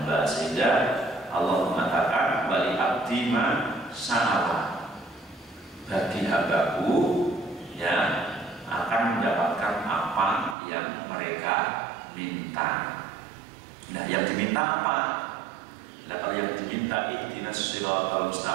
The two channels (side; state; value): left; drops out; at 10.6 s